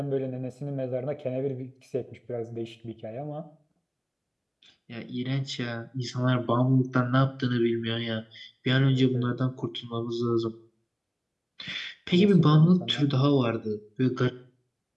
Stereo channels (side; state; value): both; identical; correlation 1.00